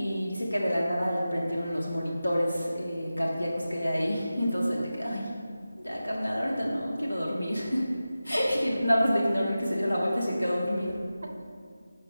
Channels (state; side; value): inverted; both; correlation -0.95